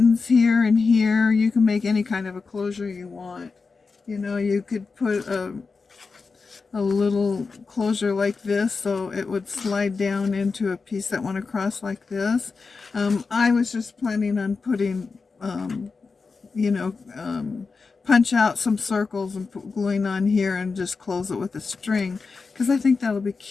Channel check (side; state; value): right; quieter; 4.5 dB